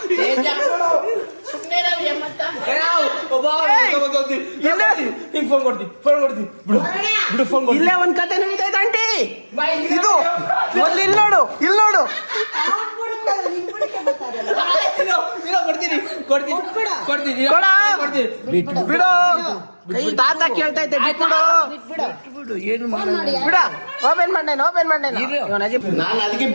ಇಲ್ಲೇ ಒಂದ್ ಕತೆ ನಡೀತೈತೆ ಆಂಟಿ. ಇದು ಮೊದ್ಲು ಇಲ್ಲಿ ನೋಡು, ಇಲ್ಲಿ ನೋಡು. ಬಿಡು, ತಾತ ಕೇಳ್ತೈತೆ. ಬಿಡು, ಏನು ಬಿಡ. ಓಪನ್ ಮಾಡ್ದೇನೆ. ನಾನು ಅದಕ್ಕೆ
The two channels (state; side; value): inverted; both; correlation -1.00